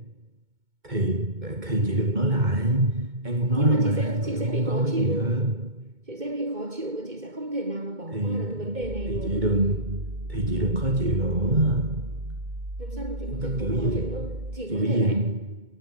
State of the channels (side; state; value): left; late; 2.2 ms